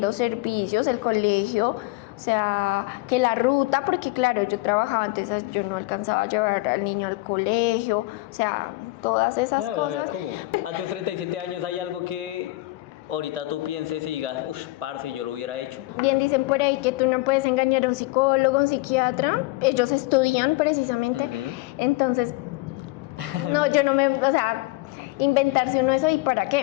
servicios, el colegio, o sea, que la ruta, porque claro, yo trabajaba antes, yo no alcanzaba a llevar al niño al colegio, o sea, todas esas Claro, cosas. ¿cómo? A tus 37 años hay algo que ahorita tú pienses y digas, uff, parce, yo lo hubiera hecho. Bien dicen por ahí que tú no puedes engañar a un psicólogo, a un psiquiatra, ellos estudian precisamente, entonces, no, yo no me, o sea, inventarse uno eso y para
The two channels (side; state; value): right; quieter; 20.7 dB